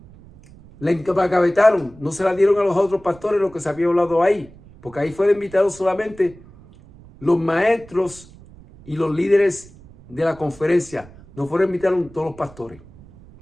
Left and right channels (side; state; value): right; noise; rumble, 22 dB below the sound